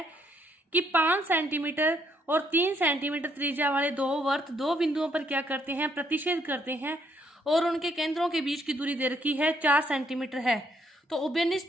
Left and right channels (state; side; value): normal; both; correlation 0.71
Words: कि 5 सेंटीमीटर और 3 सेंटीमीटर त्रिज्या वाले दो वर्त दो बिंदुओं पर क्या करते हैं, प्रतिच्छेद करते हैं और उनके केंद्रों के बीच की दूरी दे रखी है 4 सेंटीमीटर है। तो